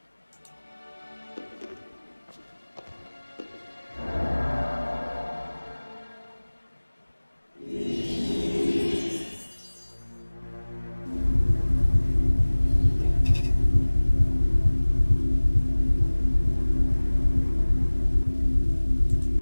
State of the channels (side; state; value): both; inverted; correlation -1.00